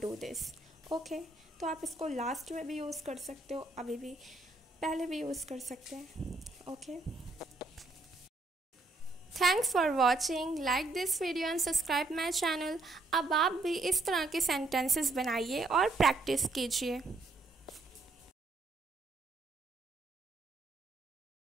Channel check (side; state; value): left; quieter; 3.1 dB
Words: do this, okay. तो आप इसको लास्ट में भी यूज़ कर सकते हो, अभी भी पहले भी यूज़ कर सकते हैं, okay. Thanks for watching, like this video and subscribe my channel. अब आप भी इस तरह के सेंटेंसेस बनाइए और प्रैक्टिस कीजिए।